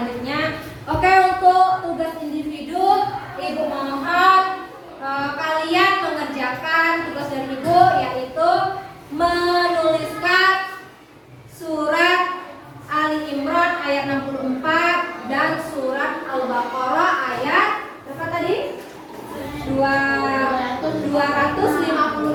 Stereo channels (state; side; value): identical; both; correlation 1.00